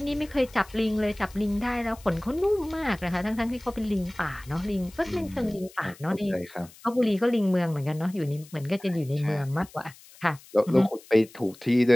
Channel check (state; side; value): noise; left; hiss, 22 dB below the sound